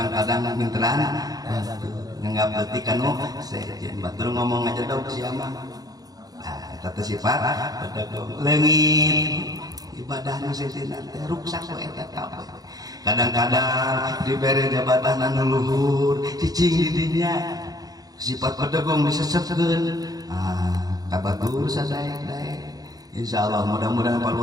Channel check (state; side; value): late; left; 0.18 ms